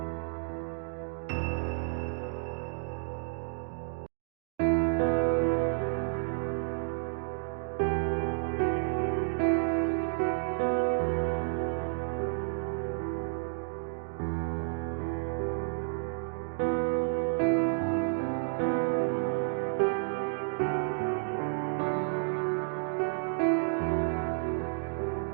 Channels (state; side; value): silent; left; digital silence